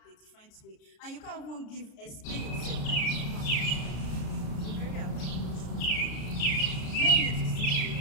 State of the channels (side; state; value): right; late; 33 ms